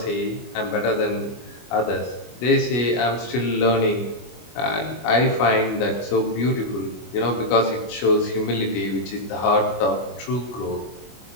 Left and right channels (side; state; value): right; late; 25 ms